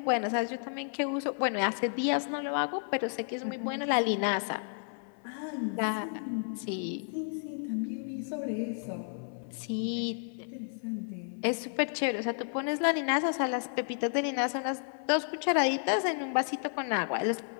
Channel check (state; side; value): silent; right; 57 dB below the other